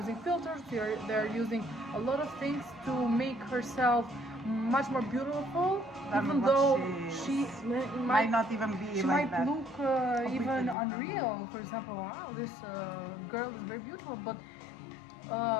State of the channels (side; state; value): right; drops out; at 10.8 s